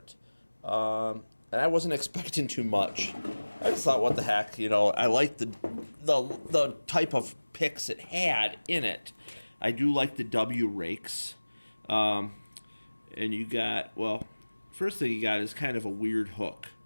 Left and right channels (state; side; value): inverted; both; correlation -1.00